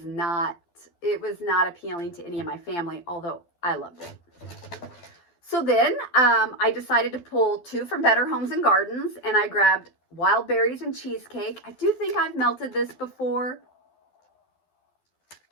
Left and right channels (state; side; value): late; right; 12 ms